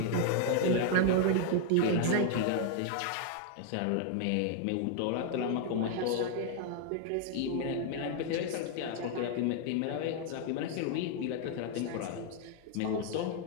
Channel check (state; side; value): different; both; correlation 0.00